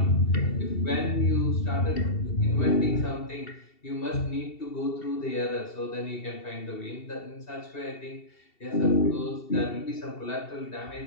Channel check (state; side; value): late; right; 2.7 ms